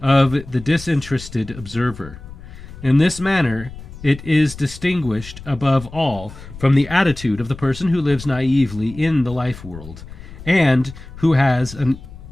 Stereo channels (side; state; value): left; noise; rumble, 15 dB below the sound